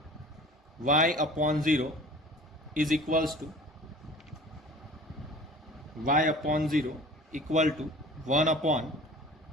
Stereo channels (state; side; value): normal; both; correlation 0.44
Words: y upon 0 is equals to y upon 0 equal to 1 upon